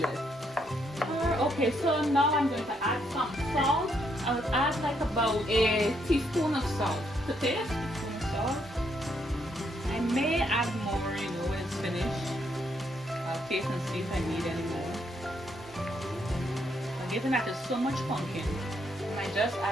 Okay, so now I'm going to add some salt. I would add like about a teaspoon of salt to taste. Teaspoon of salt. I may add more, you know, when it's finished. I'll taste and see if I need any more. But given that there's so much pumpkin, I just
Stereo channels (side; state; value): both; normal; correlation 0.74